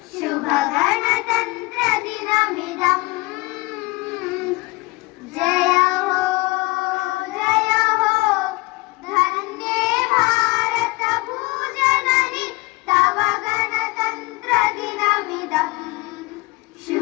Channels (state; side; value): quieter; right; 23.6 dB